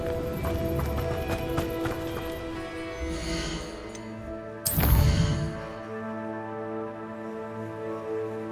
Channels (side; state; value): both; identical; correlation 1.00